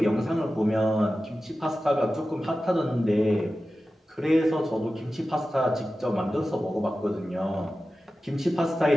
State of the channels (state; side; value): normal; both; correlation 0.94